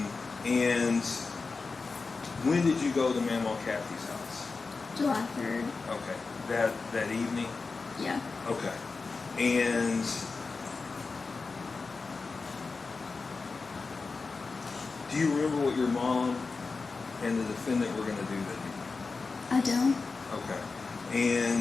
And when did you go to Mama Kathy's house? July 3rd. Okay. That evening? Yeah. Okay. And do you remember what your mom and the defendant were going to do that evening? I don't. Okay.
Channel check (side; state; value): right; quieter; 4.2 dB